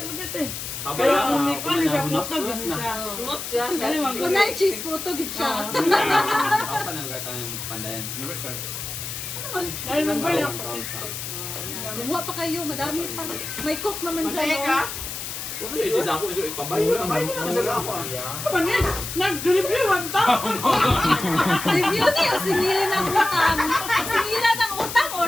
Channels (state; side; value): noise; left; hiss, 7 dB below the sound